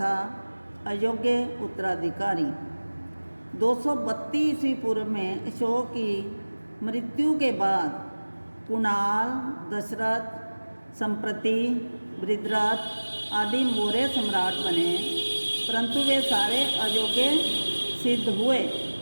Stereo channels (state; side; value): inverted; both; correlation -1.00